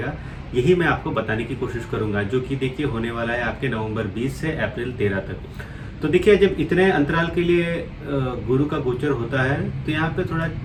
यही मैं आपको बताने की कोशिश करूंगा। जो कि देखिए होने वाला है आपके नवंबर 20 से अप्रैल 13 तक। तो देखिए, जब इतने अंतराल के लिए गुरु का गोचर होता है तो यहाँ पे थोड़ा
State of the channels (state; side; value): identical; both; correlation 1.00